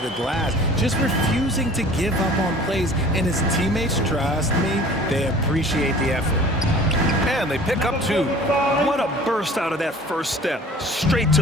the glass? Just refusing to give up on plays, and his teammates, trust me, they appreciate the effort. And they pick up 2. What a burst out of that first step. Straight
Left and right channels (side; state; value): both; normal; correlation 0.46